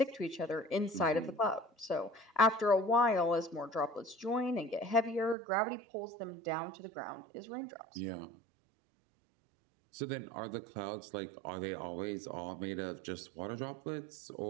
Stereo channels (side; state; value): left; drops out; at 5.4 s